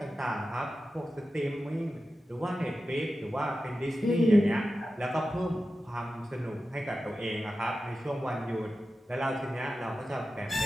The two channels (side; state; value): both; normal; correlation 0.93